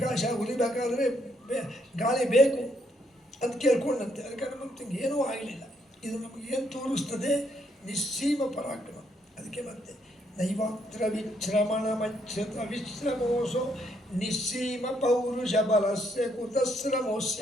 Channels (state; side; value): normal; both; correlation 0.73